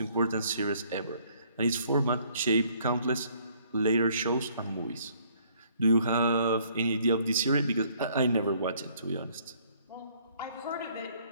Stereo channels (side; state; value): both; inverted; correlation -0.62